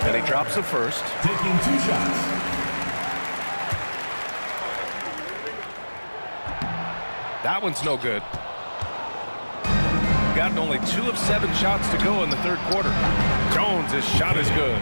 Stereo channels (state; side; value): inverted; both; correlation -1.00